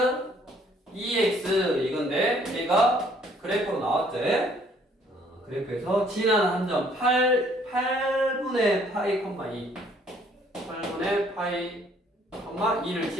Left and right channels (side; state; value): both; normal; correlation 0.62